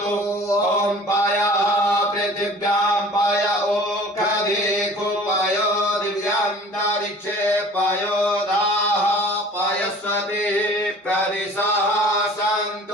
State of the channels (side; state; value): both; normal; correlation 0.46